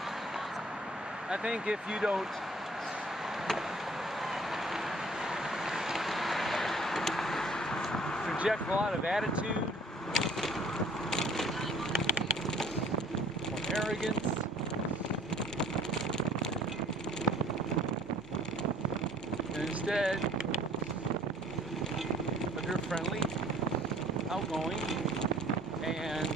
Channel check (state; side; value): normal; both; correlation 0.55